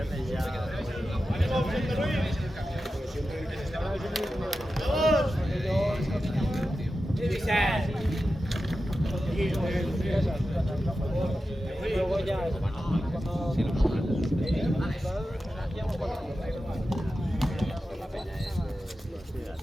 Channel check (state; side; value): normal; both; correlation 0.92